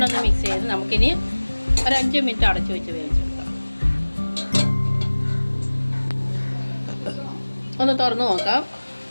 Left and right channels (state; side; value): inverted; both; correlation -1.00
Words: ഒന്ന് മിക്സ് ചെയ്ത് നമുക്കിനി ഒരു 5 മിനിറ്റ് അടച്ചു വെച്ച് വേവിച്ചെടുക്കാം. ഒന്ന് തുറന്ന് നോക്കാം.